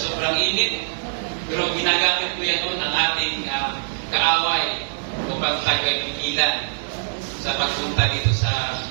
sobrang init? Pero ginagamit ko yan noon ang ating kaaway upang tayo ay tigilan sa pagpunta dito sa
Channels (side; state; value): left; silent; digital silence